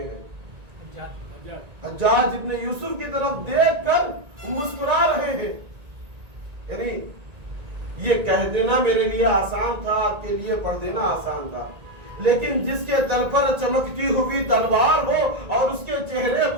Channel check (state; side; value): late; left; 1.9 ms